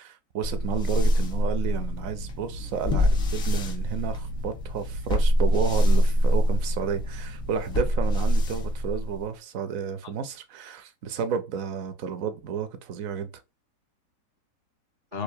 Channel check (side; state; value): left; late; 4.0 ms